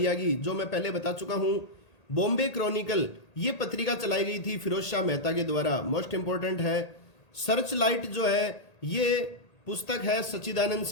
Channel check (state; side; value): late; right; 1.8 ms